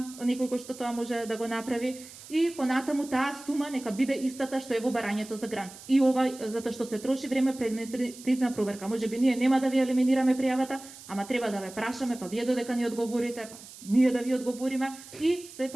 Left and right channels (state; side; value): noise; right; hiss, 17 dB below the sound